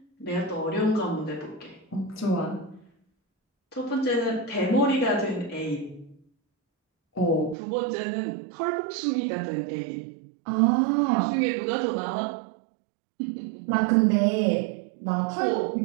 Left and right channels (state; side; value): drops out; left; at 7.6 s